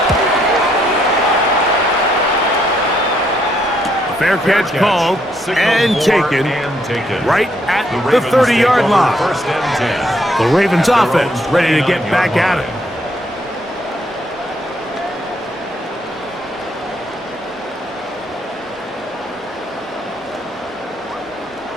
Fair catch called and taken right at the 30-yard line. The Ravens offense ready to get back at it.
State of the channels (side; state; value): both; normal; correlation 0.72